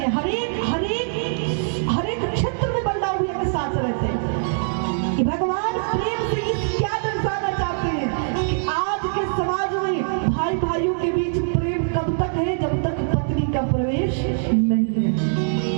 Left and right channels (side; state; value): left; silent; digital silence